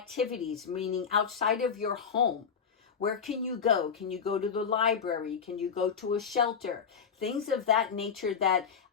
meaning outside of your home. Where can you go? Can you go to the library? Can you go to a shelter? Things of that nature that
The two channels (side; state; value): right; quieter; 6.6 dB